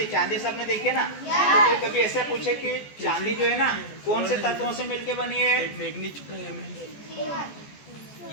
चांदी सबने देखी है ना। तो कोई कभी ऐसा पूछे कि चांदी जो है ना कौन से तत्वों से मिलके बनी है?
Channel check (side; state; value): right; late; 14 ms